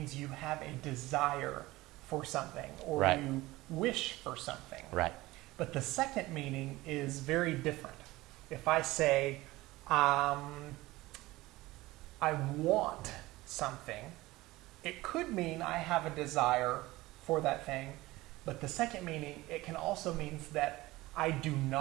you have a desire for something, or Right. you wish for something. Right. But the second meaning is very different. If I say, I want something, it could mean I have a desire for that thing, but the second meaning, it can also mean that I do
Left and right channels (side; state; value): left; quieter; 19.1 dB